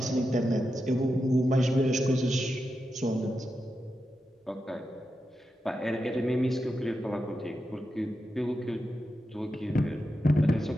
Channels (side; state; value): both; normal; correlation 0.88